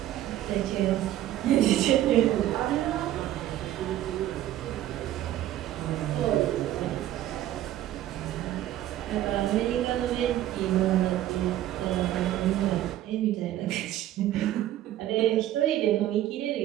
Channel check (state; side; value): quieter; left; 13.3 dB